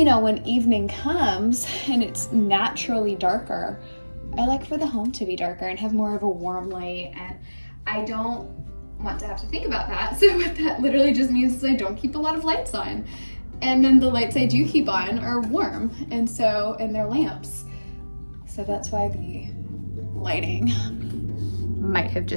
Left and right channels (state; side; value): inverted; both; correlation -1.00